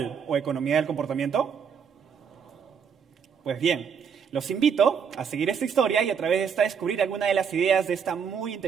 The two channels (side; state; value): left; quieter; 6.9 dB